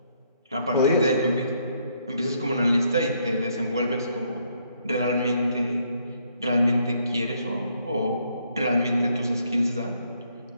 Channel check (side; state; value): both; inverted; correlation -0.71